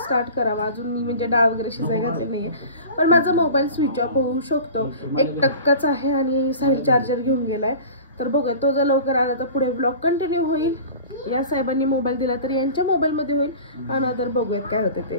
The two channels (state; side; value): inverted; both; correlation -0.38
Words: स्टार्ट करावा. अजून मी म्हणजे डाळ वगैरे शिजाय घातले नाही आहे, पण माझा मोबाईल स्विच ऑफ होऊ शकतो. 1% आहे आणि साईड चार्जर घेऊन गेला आहे. तर बघूया, तो जर लवकर आला तर पुढे व्लॉग कंटिन्यू होईल. या साहेबांनी मोबाईल दिला तर यांच्या मोबाईलमध्ये होईल. आणि तर बघूयात काय होते